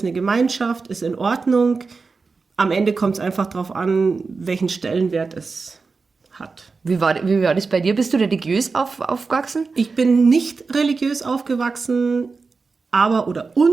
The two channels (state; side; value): quieter; left; 4.4 dB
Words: eine Gemeinschaft, ist in Ordnung. Am Ende kommt es einfach darauf an, welchen Stellenwert es hat. Wie war das bei dir? Bist du religiös aufgewachsen? Ich bin nicht religiös aufgewachsen,